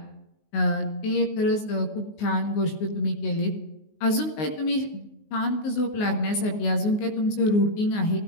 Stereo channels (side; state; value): right; late; 19 ms